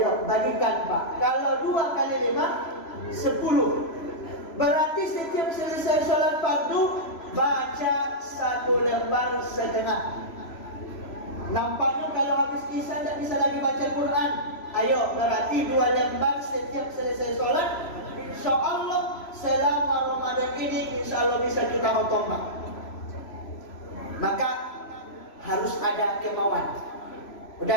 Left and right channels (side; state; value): right; late; 3.0 ms